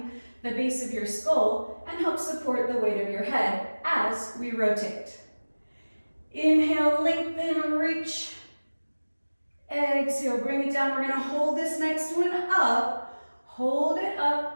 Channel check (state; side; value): inverted; both; correlation -1.00